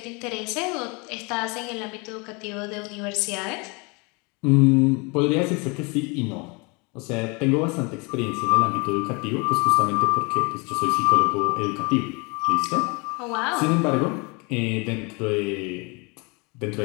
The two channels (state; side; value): quieter; right; 29.8 dB